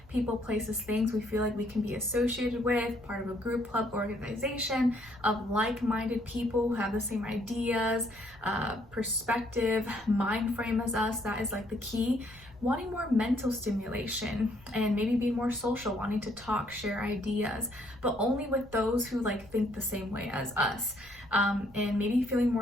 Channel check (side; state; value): right; noise; rumble, 24 dB below the sound